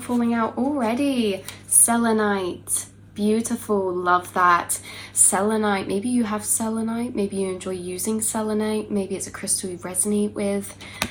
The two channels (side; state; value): both; identical; correlation 1.00